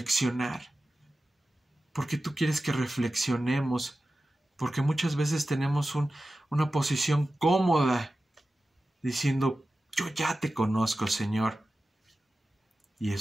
porque tú quieres que reflexionemos, porque muchas veces tenemos una posición cómoda, diciendo, Yo ya te conozco, Señor. Y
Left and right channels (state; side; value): normal; both; correlation 0.94